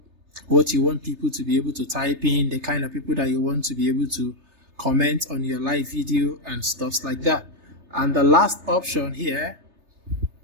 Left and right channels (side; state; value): left; late; 3.3 ms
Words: What you want people to be able to type in, the kind of people that you want to be able to comment on your live video and stuff like that. And the last option here,